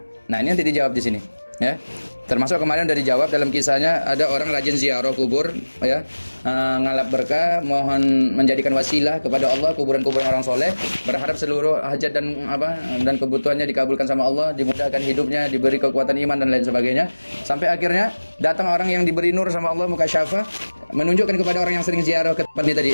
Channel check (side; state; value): both; inverted; correlation -1.00